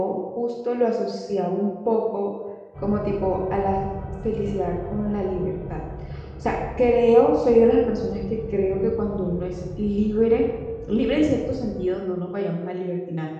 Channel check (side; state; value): both; identical; correlation 1.00